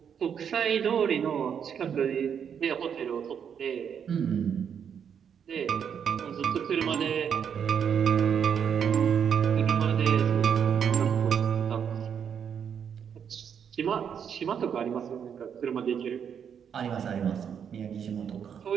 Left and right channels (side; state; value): left; quieter; 7.8 dB